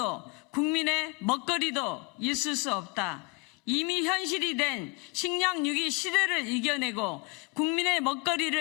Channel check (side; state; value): right; quieter; 27.3 dB